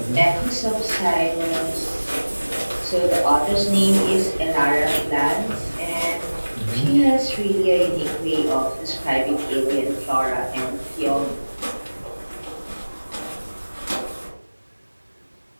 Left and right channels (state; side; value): inverted; both; correlation -1.00